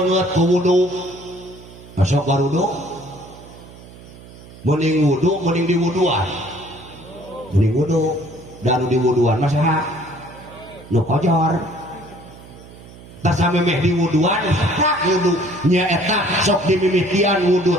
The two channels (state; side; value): noise; right; hum, 19 dB below the sound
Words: ku wudu. Masuk warudu. Mending wudu mending diwuduan. Mending wudu dan diwuduan mah saha? Nu kojor. Tasamemeh di wuduan tak wudu nyaeta sok dimimitian wudu